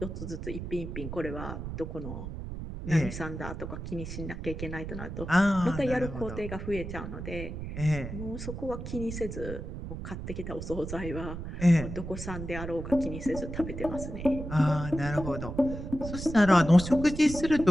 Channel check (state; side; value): noise; right; rumble, 7 dB below the sound